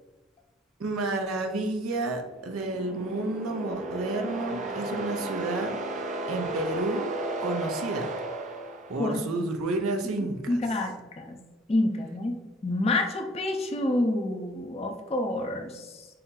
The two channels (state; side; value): normal; both; correlation 0.50